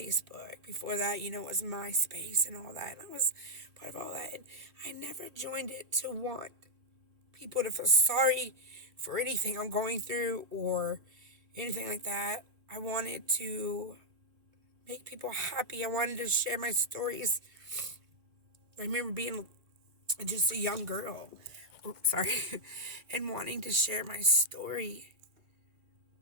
Before that, it was MySpace and all that. And I was part of all that. And I never joined it to want people to feel sorry for anything I'm going through or anything like that. I wanted to make people happy. I wanted to share my stories. I remember being just a young girl, and wanting to share my story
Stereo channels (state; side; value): late; left; 2.2 ms